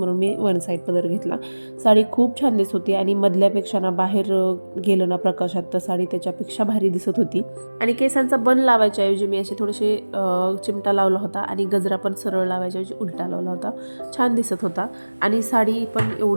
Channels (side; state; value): both; inverted; correlation -1.00